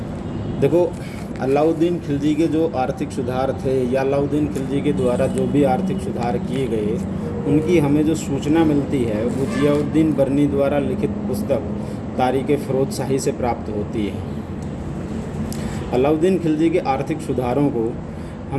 देखो, अलाउद्दीन खिलजी के जो आर्थिक सुधार थे या अलाउद्दीन खिलजी के द्वारा जो भी आर्थिक सुधार किए गए, उनकी हमें जो सूचना मिलती है वो जियाउद्दीन बर्नी द्वारा लिखित पुस्तक तारीख़ फ़िरोज़ शाही से प्राप्त होती है। अलाउद्दीन खिलजी के आर्थिक सुधारों को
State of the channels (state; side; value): identical; both; correlation 1.00